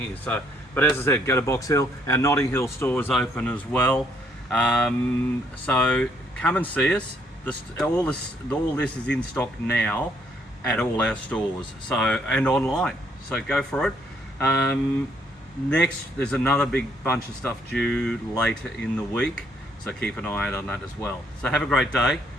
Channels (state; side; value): normal; both; correlation 0.69